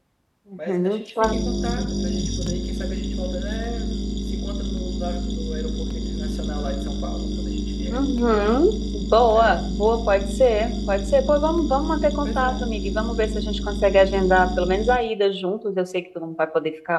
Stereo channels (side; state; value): both; identical; correlation 1.00